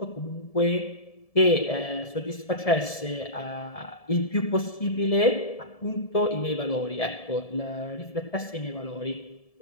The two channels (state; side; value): late; right; 1.7 ms